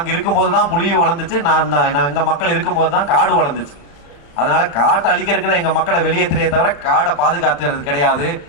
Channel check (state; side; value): late; right; 35 ms